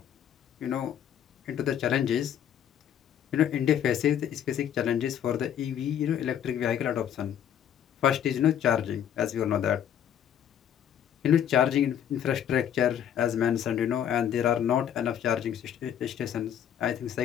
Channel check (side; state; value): right; quieter; 9.6 dB